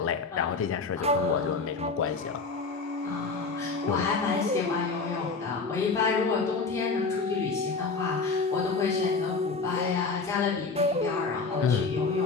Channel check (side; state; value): right; quieter; 4.3 dB